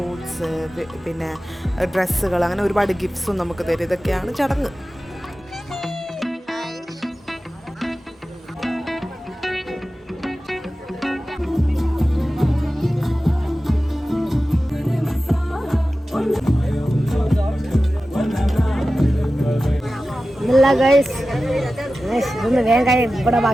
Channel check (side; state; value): both; normal; correlation 0.95